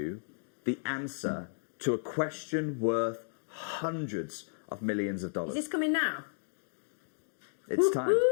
the answer to a question worth hundreds of millions of dollars. Is this coming now? It's time.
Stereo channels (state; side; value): silent; right; digital silence